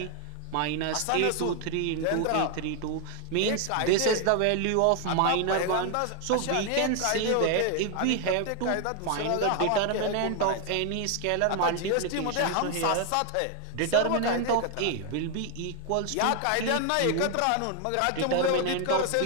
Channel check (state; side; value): different; both; correlation 0.01